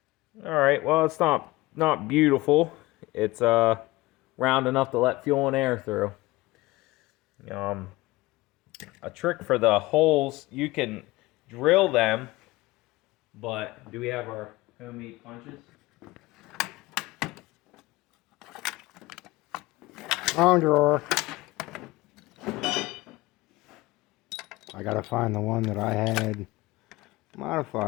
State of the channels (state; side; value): quieter; right; 20.2 dB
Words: Alright, well, it's not beautiful. It's round enough to let fuel and air through. A trick for the holes, you can drill them, but do we have our homemade punches? On drawer. I gotta find the one that I had